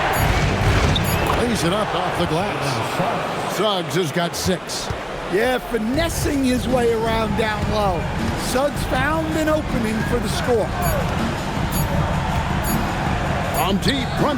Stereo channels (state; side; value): identical; both; correlation 1.00